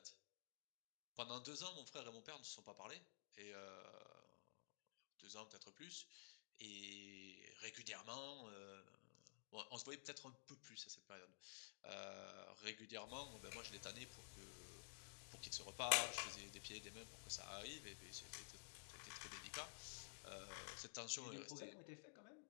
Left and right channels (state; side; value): silent; right; digital silence